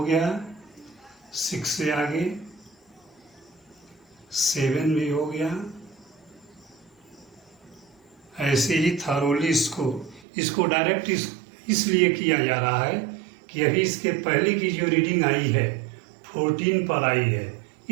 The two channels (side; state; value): left; drops out; at 10.2 s